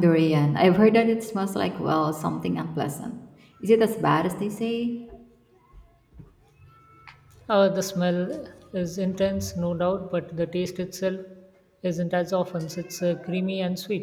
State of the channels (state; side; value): identical; both; correlation 1.00